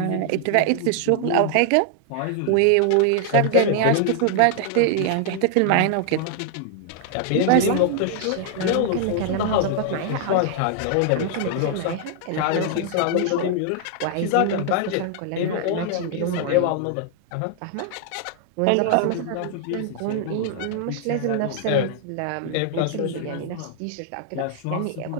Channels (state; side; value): different; both; correlation 0.00